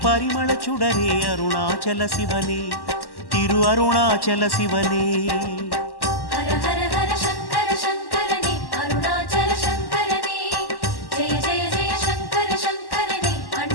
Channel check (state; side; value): late; right; 1.1 ms